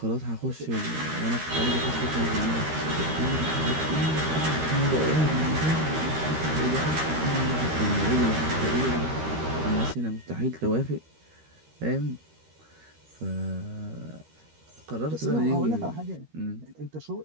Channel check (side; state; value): left; late; 13 ms